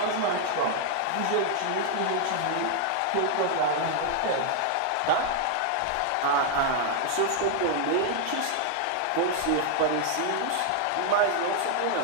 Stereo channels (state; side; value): different; both; correlation 0.00